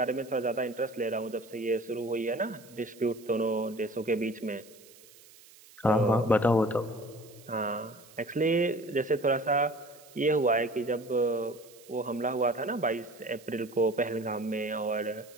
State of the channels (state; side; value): noise; right; hiss, 23 dB below the sound